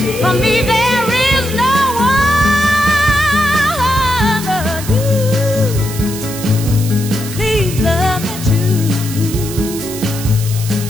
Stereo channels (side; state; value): right; noise; hiss, 10 dB below the sound